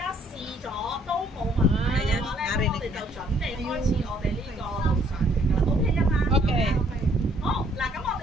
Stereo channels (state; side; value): normal; both; correlation 0.64